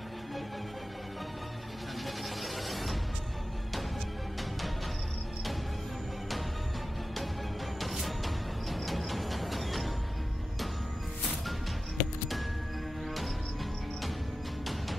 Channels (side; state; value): both; normal; correlation 0.93